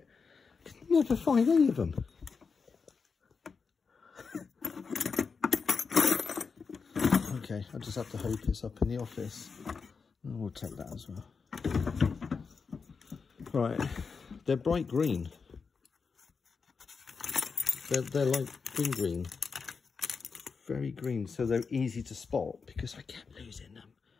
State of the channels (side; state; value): right; quieter; 5.2 dB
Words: I could never find any of them. Okay, I just have to hope it's up in the office. And we'll take that as well. Right, they're bright green. They're like green. very green, so they're easy to spot, because I kept losing them.